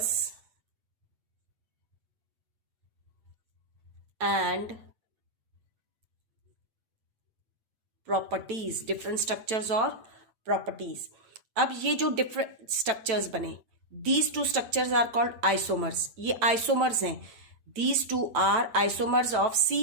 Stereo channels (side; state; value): left; late; 9.0 ms